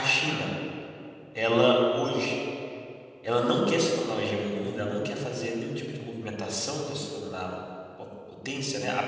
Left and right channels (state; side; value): identical; both; correlation 1.00